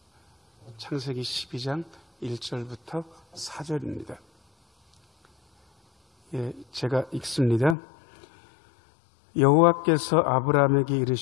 창세기 12장 1절부터 4절입니다. 제가 읽습니다. 여호와께서 아브라함에게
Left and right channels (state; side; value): drops out; right; at 7.8 s